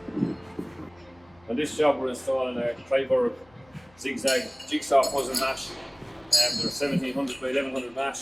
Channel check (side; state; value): left; noise; hum, 29 dB below the sound